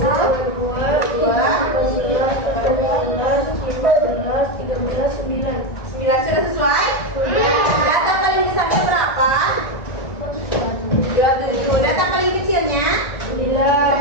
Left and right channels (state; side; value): late; right; 1.5 ms